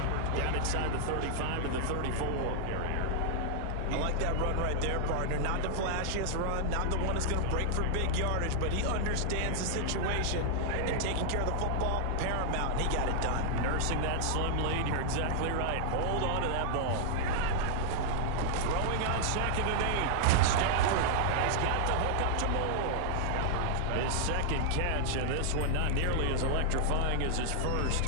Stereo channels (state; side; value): different; both; correlation -0.01